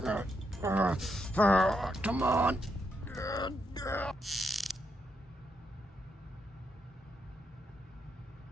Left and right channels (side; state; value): both; normal; correlation 0.80